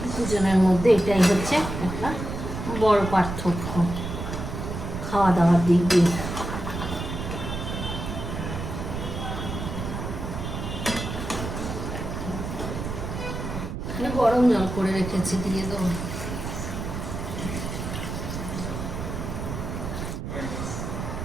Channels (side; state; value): right; noise; rumble, 5 dB below the sound